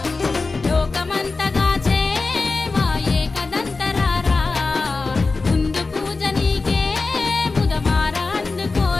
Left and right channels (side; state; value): right; quieter; 3.9 dB